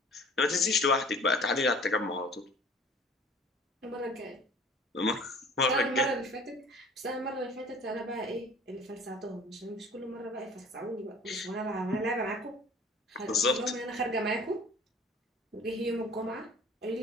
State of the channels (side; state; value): both; normal; correlation 0.48